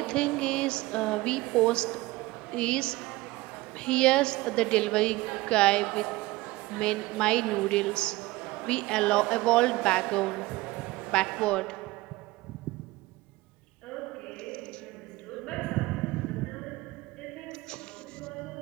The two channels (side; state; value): left; quieter; 19.7 dB